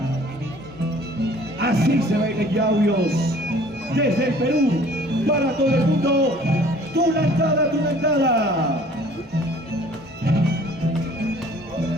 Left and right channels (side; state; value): both; normal; correlation 0.53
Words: Así se baila en Yauyos, desde el Perú, para todo el mundo. Tunantada, tunantada.